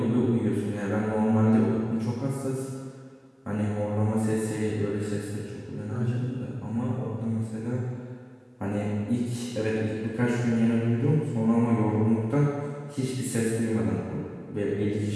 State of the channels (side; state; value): both; identical; correlation 1.00